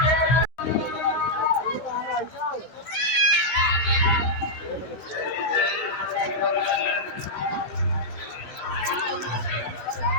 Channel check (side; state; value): right; late; 16 ms